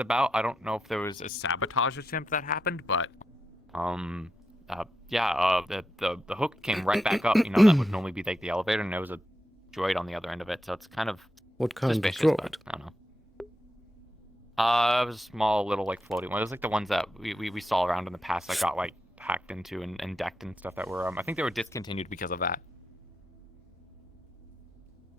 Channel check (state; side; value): normal; both; correlation 0.86